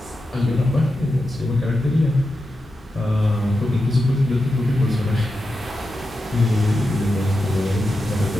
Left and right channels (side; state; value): both; normal; correlation 0.90